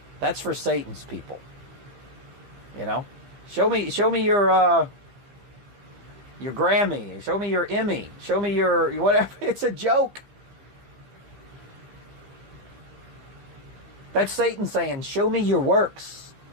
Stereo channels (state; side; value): late; left; 15 ms